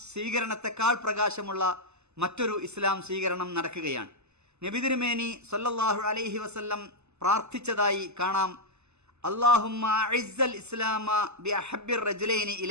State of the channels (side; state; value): left; late; 0.81 ms